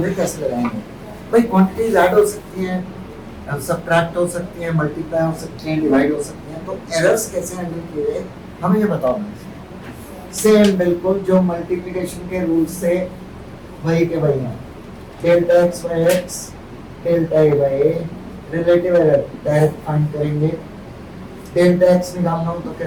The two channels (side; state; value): both; identical; correlation 1.00